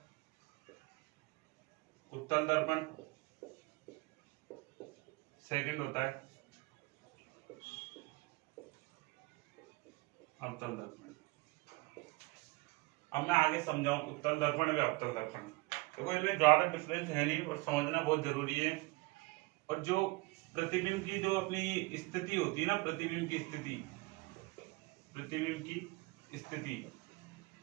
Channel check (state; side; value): quieter; left; 24.1 dB